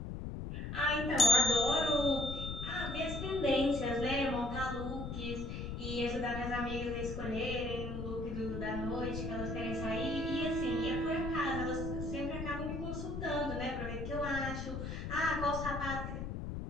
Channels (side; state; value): left; noise; rumble, 5 dB below the sound